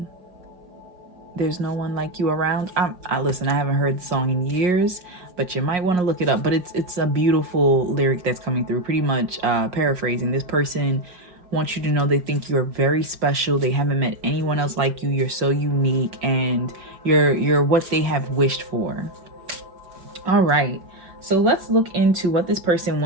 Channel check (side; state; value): left; late; 5.6 ms